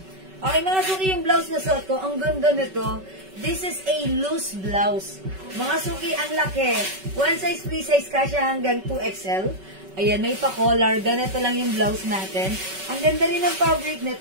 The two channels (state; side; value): late; left; 5.3 ms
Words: Okay, mga suki yung blouse na suot ko, ang ganda nito. This is a loose blouse. Mga suki, ang laki. One size, free size, kasya hanggang 2XL. Ayan, may pa-collar. Ganito lang yung blouse natin. Ang ganda rin ng fabric